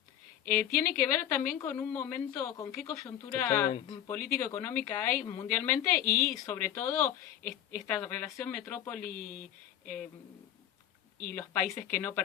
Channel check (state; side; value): quieter; right; 11.2 dB